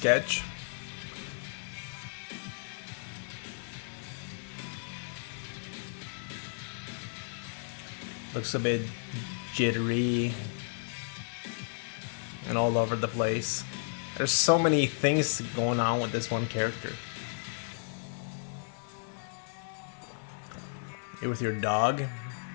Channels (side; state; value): right; silent; 55 dB below the other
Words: Looks a bit jittery and all over the place. There's so many things going on with this one character. You're with your dog,